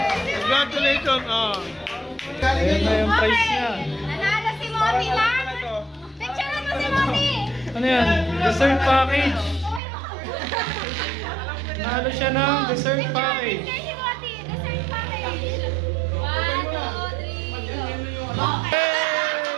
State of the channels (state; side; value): drops out; left; at 9.8 s